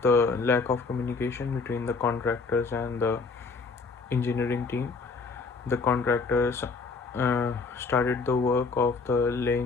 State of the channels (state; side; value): quieter; right; 4.3 dB